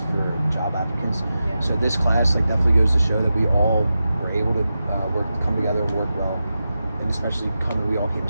for job applicants. Yeah. So this class like definitely goes to show that we all were able to come together and work well, and especially we all came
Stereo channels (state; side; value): inverted; both; correlation -0.91